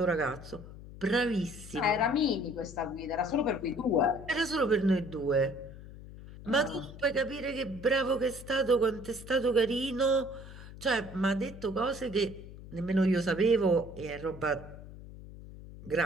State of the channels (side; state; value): left; noise; hum, 15 dB below the sound